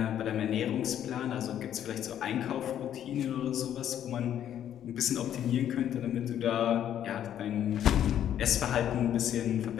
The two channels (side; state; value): right; quieter; 10.4 dB